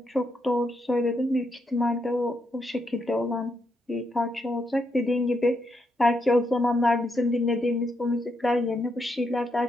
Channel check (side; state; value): both; normal; correlation 0.80